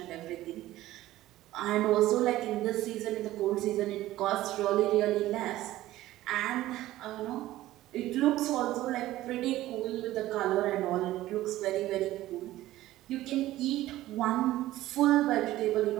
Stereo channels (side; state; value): left; quieter; 15.5 dB